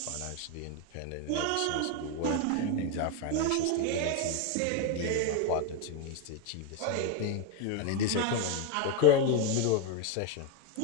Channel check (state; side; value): different; both; correlation 0.01